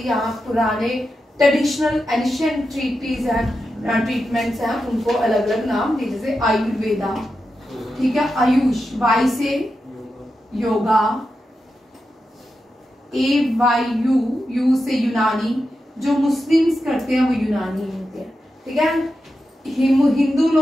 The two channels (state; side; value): normal; both; correlation 0.89